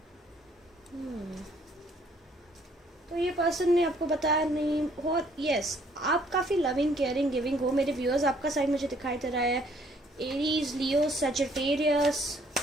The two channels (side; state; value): both; normal; correlation 0.63